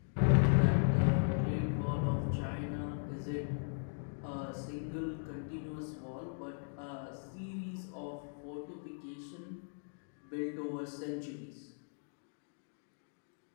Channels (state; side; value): silent; right; digital silence